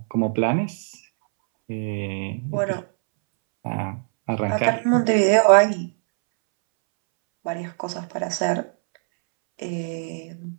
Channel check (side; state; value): left; silent; 64 dB below the other